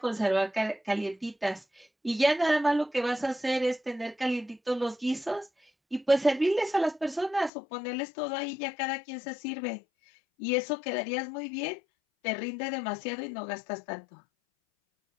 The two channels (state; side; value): drops out; right; at 7.5 s